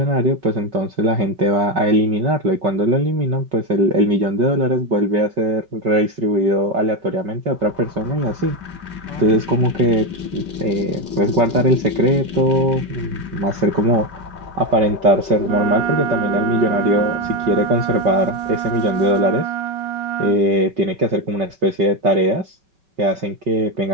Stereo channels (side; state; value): left; late; 5.3 ms